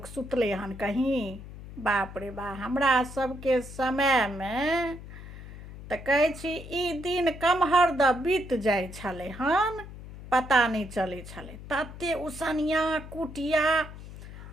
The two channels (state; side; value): noise; left; hum, 14 dB below the sound